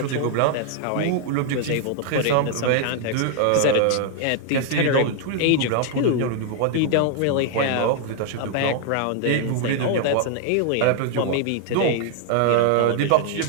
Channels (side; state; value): both; different; correlation 0.00